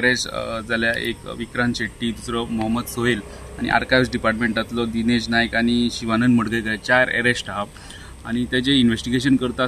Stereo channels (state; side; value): identical; both; correlation 1.00